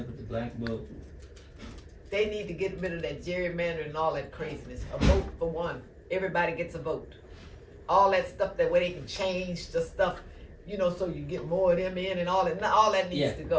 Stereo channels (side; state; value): both; identical; correlation 1.00